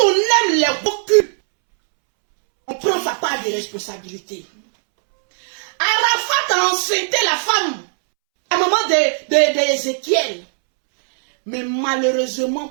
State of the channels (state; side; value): silent; left; 67 dB below the other